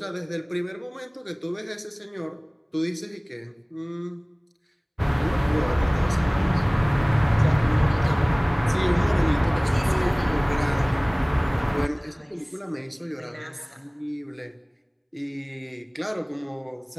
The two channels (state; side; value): identical; both; correlation 1.00